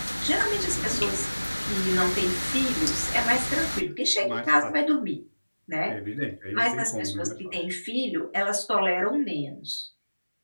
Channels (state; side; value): inverted; both; correlation -1.00